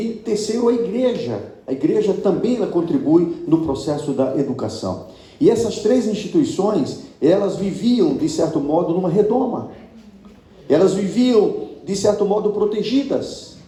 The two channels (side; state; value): both; identical; correlation 1.00